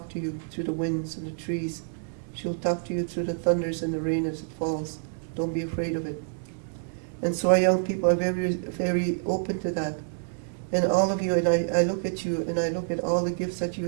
to you through the winds and the trees. She will talk to you through the thunders and the rain as it falls. Don't be afraid of it. And so our young people are very, very open to that. And all of you, and I look at you, and I look at all the gifts that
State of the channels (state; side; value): silent; left; digital silence